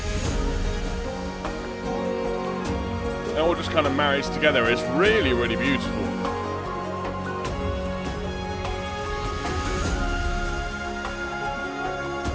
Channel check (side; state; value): both; identical; correlation 1.00